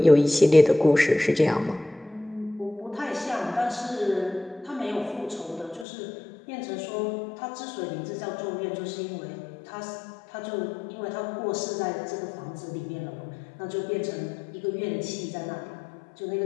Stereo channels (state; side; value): drops out; right; at 5.9 s